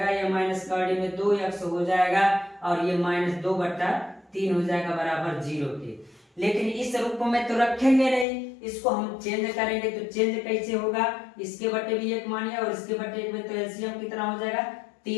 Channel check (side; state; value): right; drops out; at 8.2 s